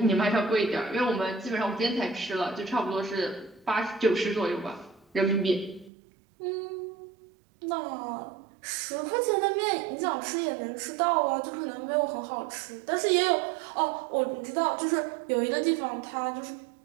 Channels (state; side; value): drops out; left; at 5.9 s